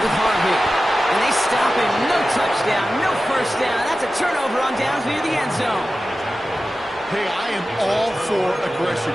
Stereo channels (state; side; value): normal; both; correlation 0.94